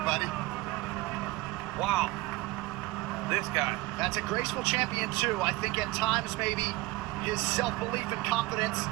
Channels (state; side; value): quieter; left; 20.4 dB